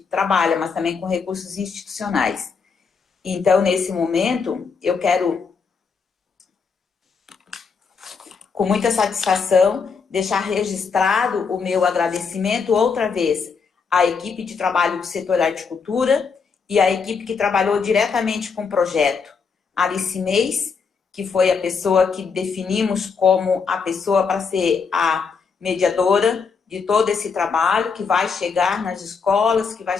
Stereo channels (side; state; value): right; quieter; 5.5 dB